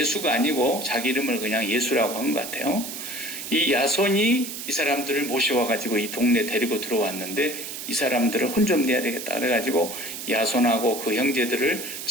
아니고 자기 이름을 그냥 예수라고 한 것 같아요. 이 야손이 이 사람들을 모셔와가지고 이 동네 데리고 들어왔는데 이 사람들을 혼 좀 내야 되겠다 그래가지고 야손하고 그 형제들을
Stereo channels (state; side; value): noise; right; hiss, 8 dB below the sound